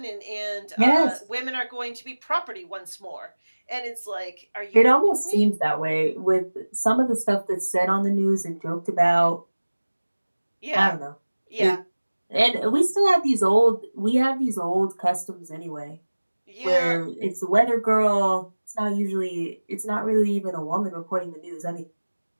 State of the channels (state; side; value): inverted; both; correlation -1.00